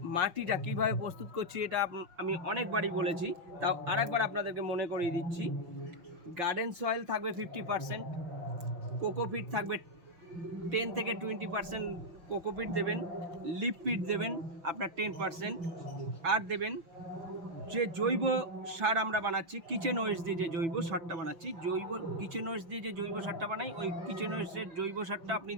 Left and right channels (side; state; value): left; late; 6.0 ms